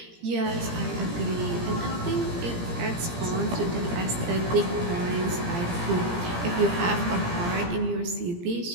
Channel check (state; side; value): late; left; 17 ms